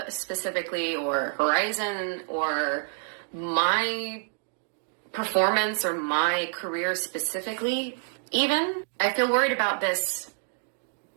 specifically or Horizon or my performance or my career specifically even. I feel worried about this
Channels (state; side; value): silent; left; digital silence